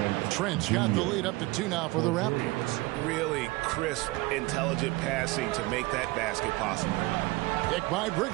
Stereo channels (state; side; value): quieter; left; 21.7 dB